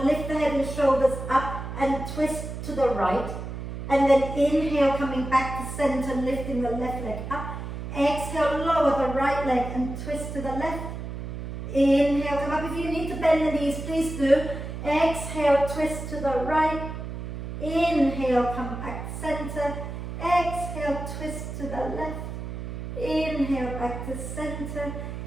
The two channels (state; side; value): noise; right; hum, 7 dB below the sound